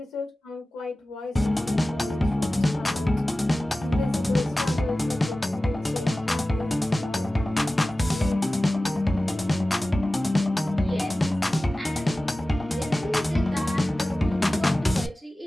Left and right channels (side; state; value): both; normal; correlation 0.96